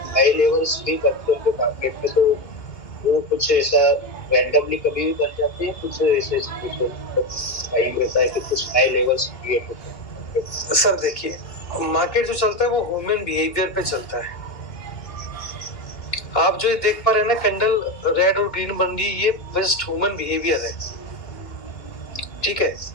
नए लेवल्स भी बनते हैं मार्केट में, तो वो कुछ ऐसा रैंडमली कभी भी बन जाते हैं, कुछ ऐसे टाइम रहता है कि कुछ नए लेवल्स क्रिएट होते हैं? सर देखिए, मार्केट जो चलता है वो ह्यूमन बिहेवियर पे चलता है। आप जो ये देख पा रहे हैं ना, कैंडल रेड और ग्रीन बन रही, ये जस्ट ह्यूमन बिहेवियर है, ठीक है।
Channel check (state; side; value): late; right; 2.2 ms